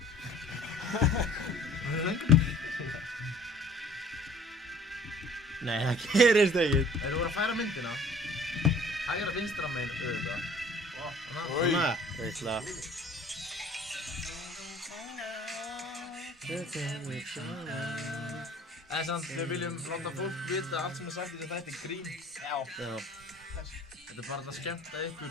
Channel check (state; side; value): normal; both; correlation 0.51